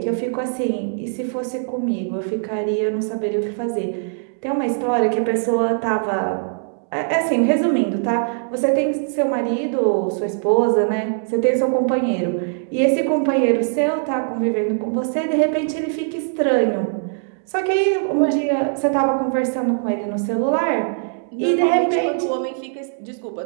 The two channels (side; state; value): left; silent; digital silence